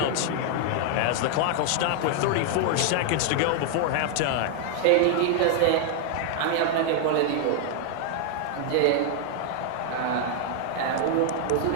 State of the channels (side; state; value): both; different; correlation 0.00